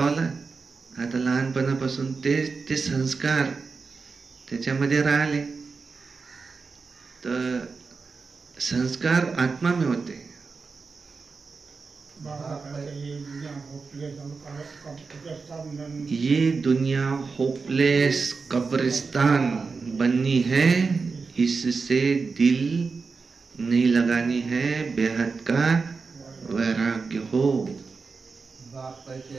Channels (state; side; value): quieter; left; 4.7 dB